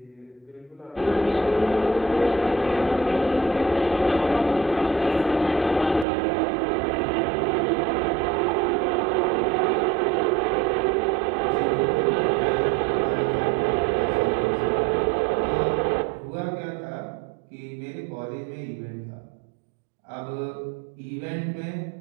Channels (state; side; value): drops out; left; at 6.1 s